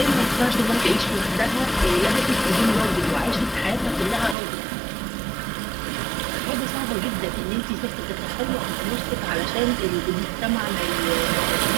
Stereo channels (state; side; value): drops out; left; at 4.4 s